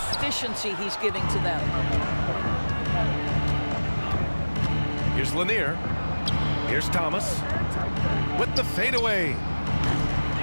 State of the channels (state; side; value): inverted; both; correlation -1.00